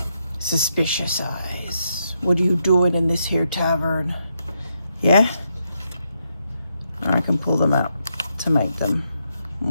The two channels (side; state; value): both; inverted; correlation -0.81